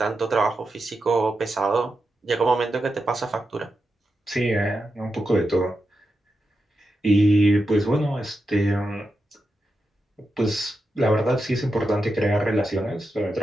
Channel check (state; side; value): normal; both; correlation 0.88